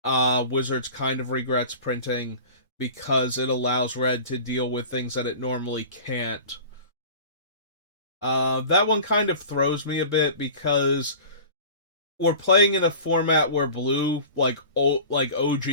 Wizards kind of regrets printing because it allows red to deal with things that it normally can't. That one kind of throws me a bit because we're playing in a format where blue, like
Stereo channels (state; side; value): inverted; both; correlation -0.39